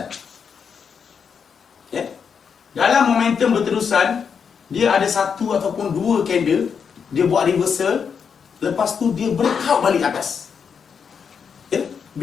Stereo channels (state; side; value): quieter; right; 6.6 dB